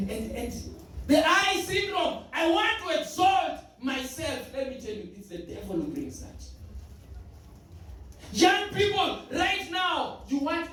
the eye syndrome, I want to exalt myself. Let me tell you, it's the devil who brings that. Young people, right now, you want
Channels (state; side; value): identical; both; correlation 1.00